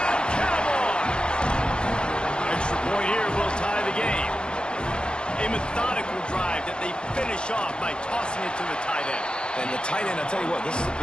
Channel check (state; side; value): late; right; 0.051 ms